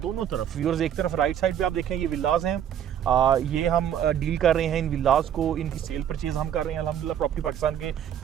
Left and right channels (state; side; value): quieter; left; 9.7 dB